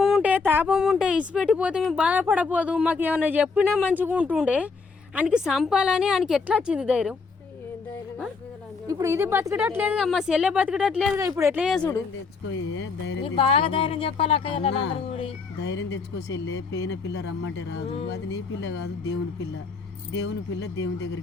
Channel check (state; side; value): quieter; right; 4.7 dB